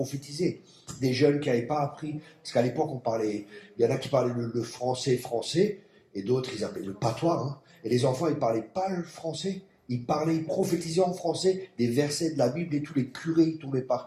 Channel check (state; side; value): identical; both; correlation 1.00